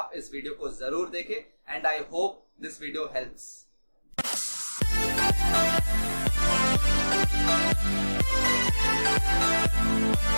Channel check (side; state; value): both; inverted; correlation -1.00